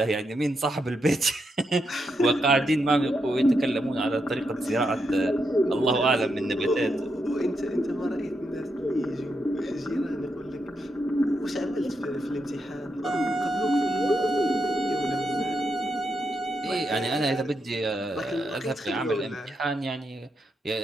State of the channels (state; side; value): normal; both; correlation 0.83